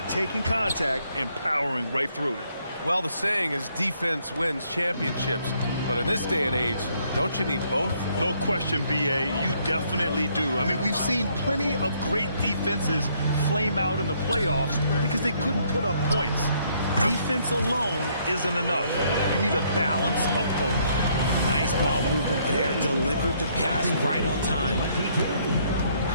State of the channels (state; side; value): inverted; both; correlation -0.68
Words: taking contact and powering right through it. Well, the saying is defense wins championships, but in this day and age, don't you need both? No question, BA, you definitely do. I mean, we've seen plenty of great defenses flame out in the playoffs because they couldn't put up points. Defense alone isn't enough. You need a balance of both. Nice ball movement there. Delivered the pass right on time.